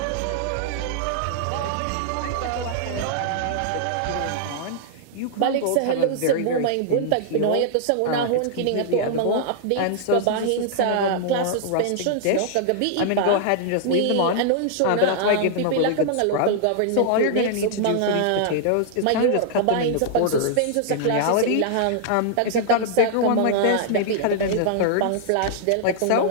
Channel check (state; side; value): different; both; correlation -0.01